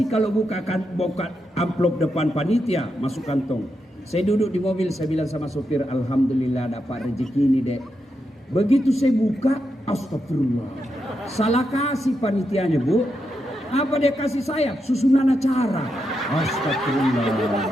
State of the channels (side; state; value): both; normal; correlation 0.84